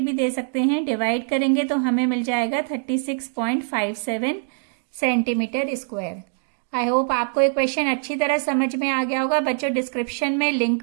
दे सकते हैं। डिवाइड करेंगे तो हमें मिल जाएगा 36.57 सेंटीमीटर स्क्वायर। आई होप आपको ये क्वेश्चन अच्छी तरह समझ में आ गया होगा। बच्चों डिस्क्रिप्शन में लिंक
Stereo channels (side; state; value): left; silent; digital silence